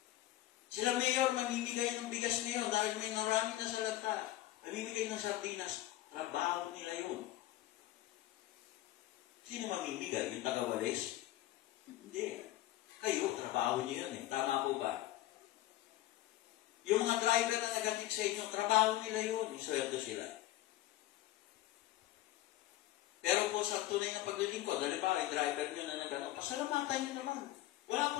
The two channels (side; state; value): right; quieter; 15.3 dB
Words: Sila mayor, mamimigay ng bigas ngayon dahil may narami na sa lata. Mamimigay ng sardinas. Trabaho nila yun. Sino mamimigay? Yung taga-walis? Hindi. Kayo, trabaho niyo yun eh. Tama po ba? Yung mga mga driver na nag-atid sa inyo, trabaho nila yun, isweldo sila. Pero po sa tunay na paglilingkod, halimbawa yung driver nyo na nag-ano, pasalamatan nyo naman. Wala